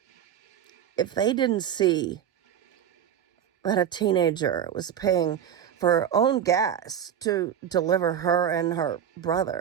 if they didn't see that a teenager was paying for her own gas to deliver her and her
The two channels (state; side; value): quieter; left; 9.3 dB